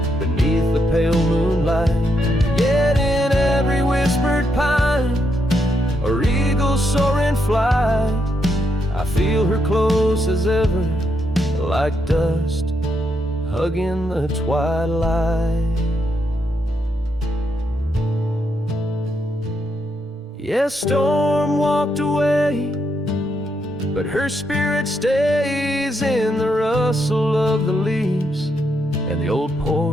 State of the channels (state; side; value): normal; both; correlation 0.79